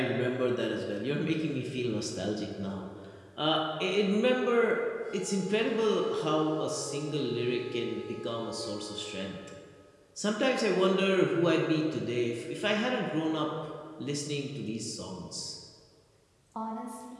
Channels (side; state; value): both; identical; correlation 1.00